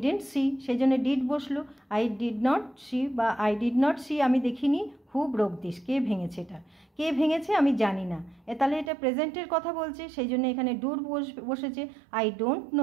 সি, সেই জন্য ডিড বসলো। আই ডিড নট সি বা আই ডিড নট সি, আমি দেখিনি। হু ব্রোক দিস, কে ভেঙেছে, এটা কে ভেঙেছে আমি জানি না, তাহলে এটা প্রেজেন্টের কথা বলছে, সেই জন্য এখানে ডুর বসেছে। I don't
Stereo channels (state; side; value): drops out; left; at 8.9 s